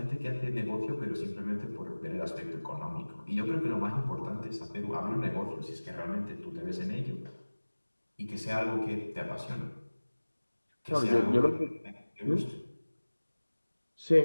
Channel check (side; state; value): both; inverted; correlation -1.00